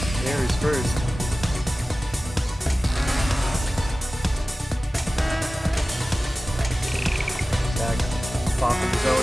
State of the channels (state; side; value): normal; both; correlation 0.96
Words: Mary's first. Zach popping the